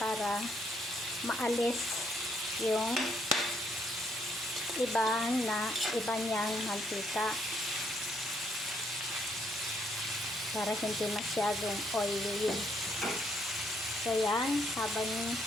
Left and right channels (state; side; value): normal; both; correlation 0.72